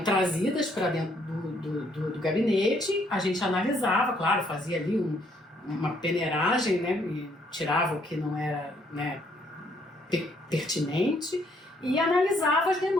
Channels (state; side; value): normal; both; correlation 0.68